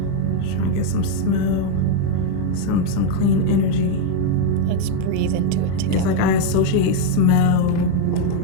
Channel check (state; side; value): different; both; correlation 0.00